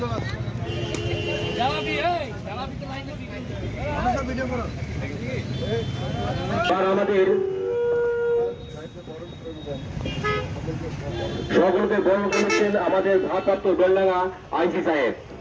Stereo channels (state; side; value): identical; both; correlation 1.00